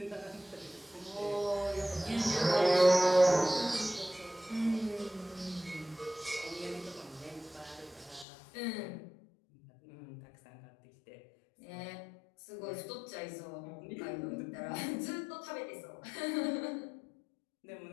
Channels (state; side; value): drops out; right; at 8.2 s